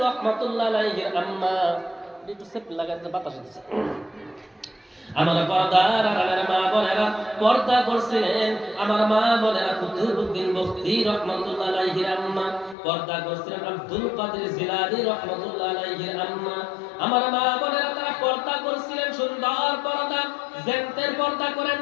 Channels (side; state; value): right; drops out; at 12.8 s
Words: রাহমাতুল্লাহ আলাইহির আম্মা। একটু সেপ লাগাতে বাতাস দিচ্ছে। আমার পর্দার আড়ালের মা বোনেরা পর্দা করছিলেন, আমার মা বোনেরা কুতুবউদ্দিন বখতি রাহমাতুল্লাহ আলাইহির আম্মা, পর্দা করছিলেন আব্দুল কাদের জিলানী রাহমাতুল্লাহ আলাইহির আম্মা। আমার মা বোনেরা তারা পর্দা করছিলেন, সুন্দর পর্দা, জেন্টের পর্দা করেন